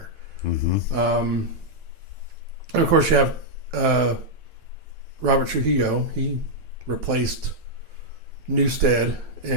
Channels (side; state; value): left; late; 9.1 ms